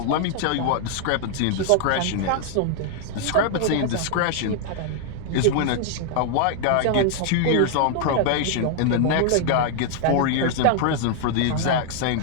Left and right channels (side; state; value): both; different; correlation 0.00